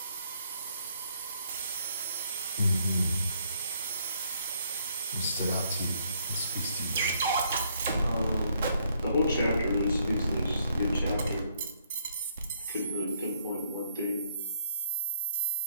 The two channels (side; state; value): both; inverted; correlation -0.71